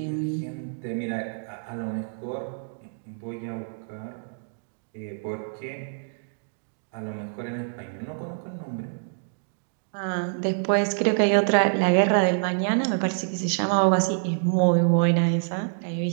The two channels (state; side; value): silent; left; digital silence